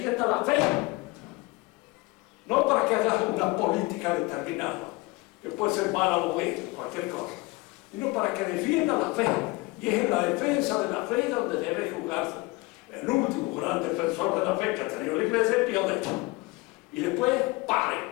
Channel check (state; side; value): quieter; right; 23.7 dB